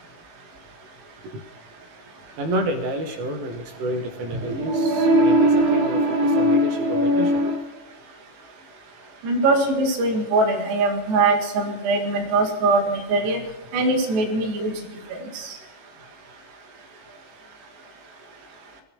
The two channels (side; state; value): left; late; 18 ms